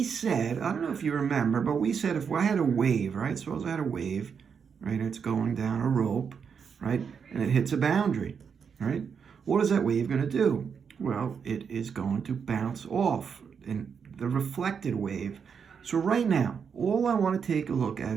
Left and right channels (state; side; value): quieter; left; 6.6 dB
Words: said, I don't know if you remember, but we said if I had a wave, right? Suppose I had a wave, right? It's going down a rope, right? And it hits a boundary, right? What is that wave gonna do? Well, it is going to bounce off in the reflected wave. So right now, all I wanna take a look